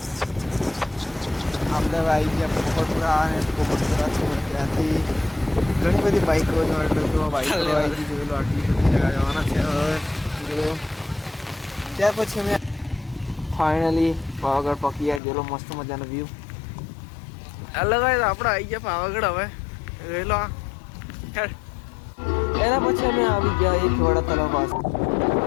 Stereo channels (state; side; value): drops out; right; at 15.2 s